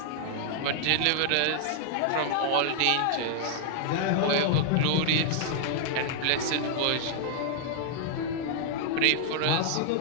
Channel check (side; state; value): both; different; correlation -0.01